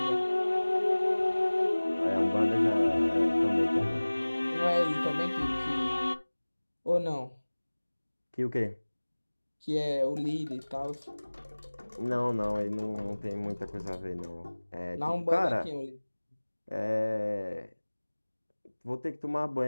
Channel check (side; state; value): both; inverted; correlation -1.00